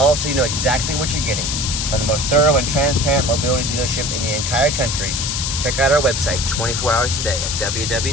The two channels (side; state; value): left; noise; hiss, 2 dB below the sound